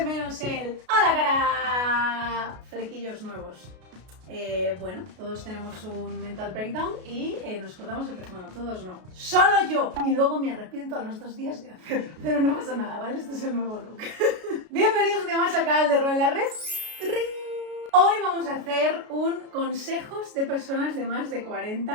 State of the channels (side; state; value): left; late; 33 ms